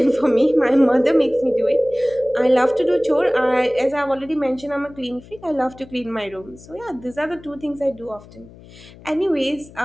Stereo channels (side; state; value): left; noise; hum, 21 dB below the sound